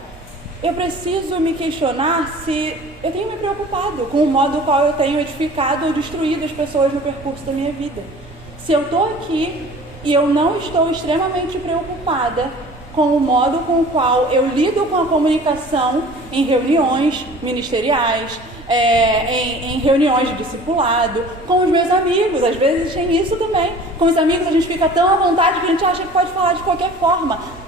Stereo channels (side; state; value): both; normal; correlation 0.45